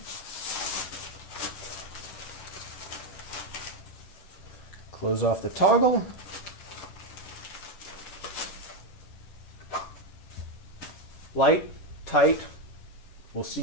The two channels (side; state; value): right; late; 11 ms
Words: Close off the toggle. Light, tight, We'll see